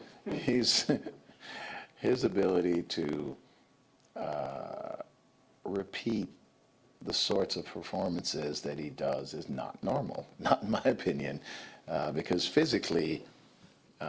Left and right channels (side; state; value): both; identical; correlation 1.00